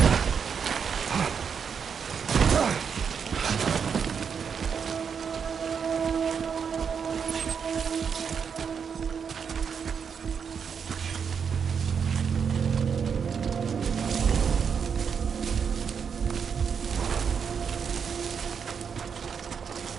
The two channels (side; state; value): left; quieter; 6.7 dB